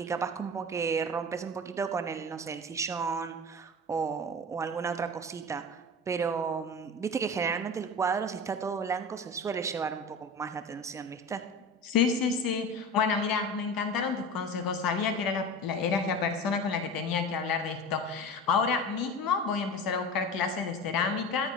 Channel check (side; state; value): both; normal; correlation 0.31